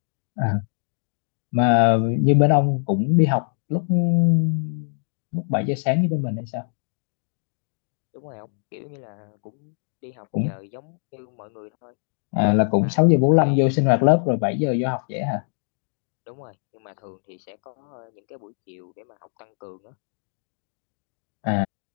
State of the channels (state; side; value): silent; right; digital silence